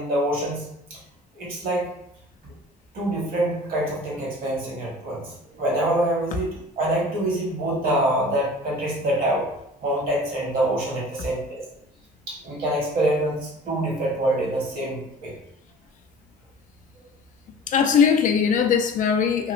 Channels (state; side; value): normal; both; correlation 0.43